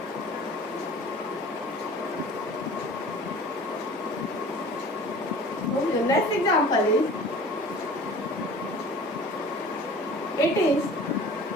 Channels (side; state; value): both; normal; correlation 0.44